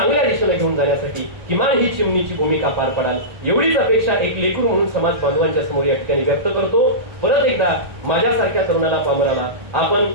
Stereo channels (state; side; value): late; left; 1.8 ms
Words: दिशेने घेऊन जाण्यासाठी किमान ही चिमणीची भूमिका पार पडाल एवढीच अपेक्षा एक लेकरू म्हणून समाज बांधवांच्या समोर या ठिकाणी व्यक्त करतो। परत एकदा माझ्यासारख्या तरुणाला पामराला आपण